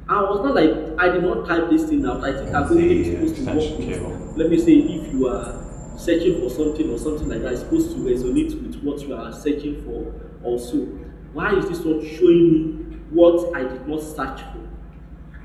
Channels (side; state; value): both; identical; correlation 1.00